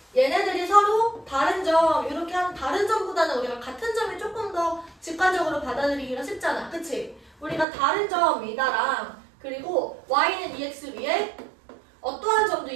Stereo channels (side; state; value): left; drops out; at 7.7 s